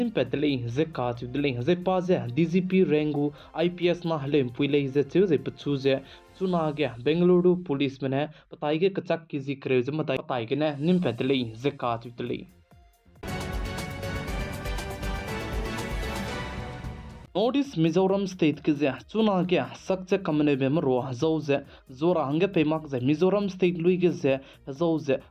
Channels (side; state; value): both; identical; correlation 1.00